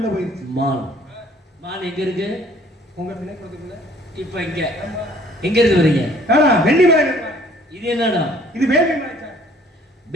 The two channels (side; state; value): both; normal; correlation 0.57